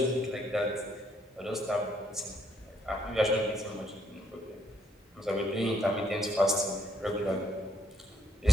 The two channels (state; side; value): normal; both; correlation 0.71